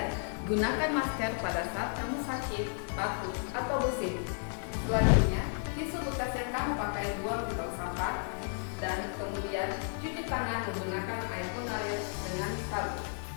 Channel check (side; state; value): right; silent; 56 dB below the other